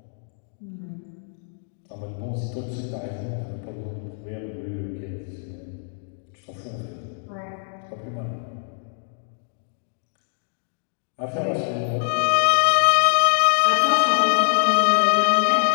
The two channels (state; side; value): silent; right; digital silence